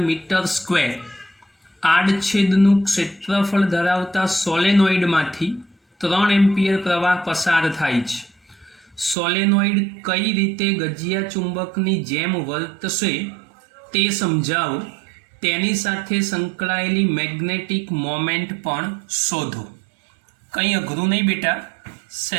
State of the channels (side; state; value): left; drops out; at 9.2 s